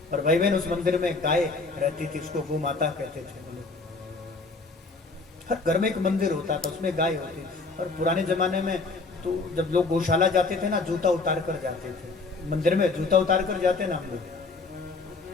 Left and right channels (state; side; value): quieter; right; 3.8 dB